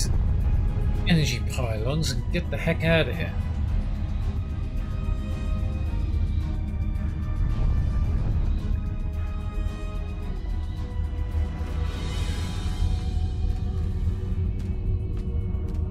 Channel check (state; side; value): identical; both; correlation 1.00